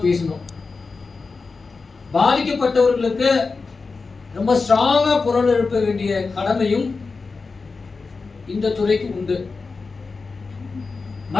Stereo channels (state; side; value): quieter; right; 4.3 dB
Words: பேசணும். பாதிக்கப்பட்டவர்களுக்கு ரொம்ப ஸ்ட்ராங்கா குரல் எழுப்ப வேண்டிய கடமையும் இந்த துறைக்கு உண்டு.